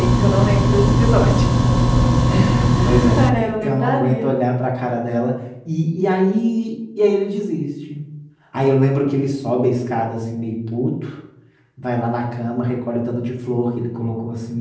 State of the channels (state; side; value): identical; both; correlation 1.00